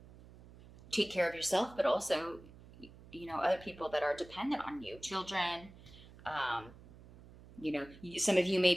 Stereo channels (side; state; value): right; noise; hum, 20 dB below the sound